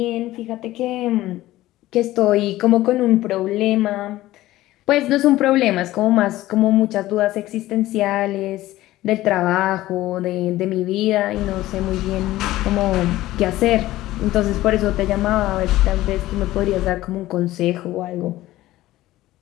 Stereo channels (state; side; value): quieter; right; 16.1 dB